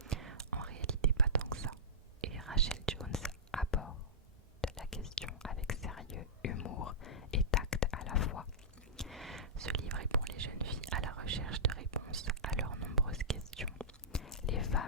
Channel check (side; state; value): both; normal; correlation -0.16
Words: En réalité pas tant que ça. Et Rachel Jones aborde la question avec sérieux, humour et tact à la fois. Ce livre est pour les jeunes filles à la recherche de réponses à leurs nombreuses questions. Les